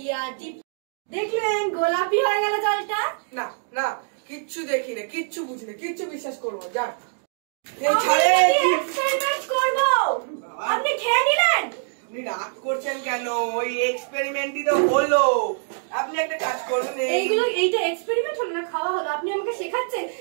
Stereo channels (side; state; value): left; silent; digital silence